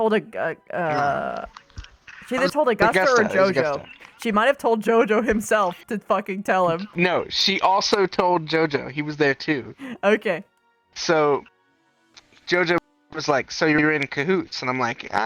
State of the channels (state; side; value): identical; both; correlation 1.00